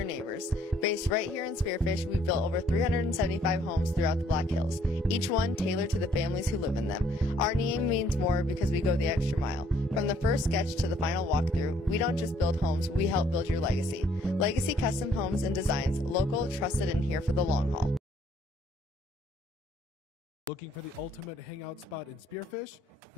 neighbors. Based right here in Spearfish, we've built over 375 homes throughout the Black Hills, each one tailored to the families who live in them. Our name means more because we go the extra mile. From the first sketch to the final walkthrough, we don't just build homes, we help build your legacy. Legacy Custom Homes and Designs, local, trusted, and here for the long haul. Looking for the ultimate hangout spot in Spearfish?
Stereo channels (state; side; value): normal; both; correlation 0.64